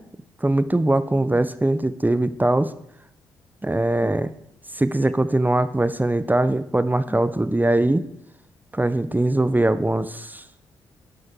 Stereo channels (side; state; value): both; normal; correlation 0.96